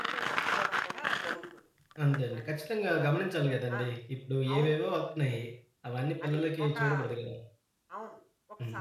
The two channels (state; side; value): identical; both; correlation 1.00